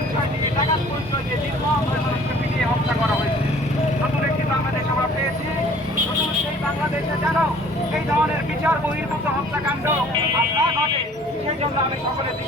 দিয়ে, ডাকাত পরিচয় দিয়ে নির্মমভাবে মানুষকে পিটিয়ে হত্যা করা হয়েছে। নতুন একটি বাংলাদেশ আমরা পেয়েছি। নতুন সেই বাংলাদেশে যেন এই ধরনের বিচার বহির্ভূত হত্যাকাণ্ড আর না ঘটে, সেই জন্য আমি সকলের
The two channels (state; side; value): normal; both; correlation 0.52